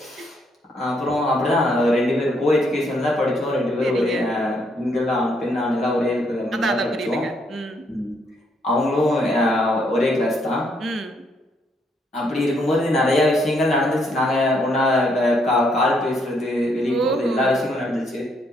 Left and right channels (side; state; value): both; normal; correlation 0.72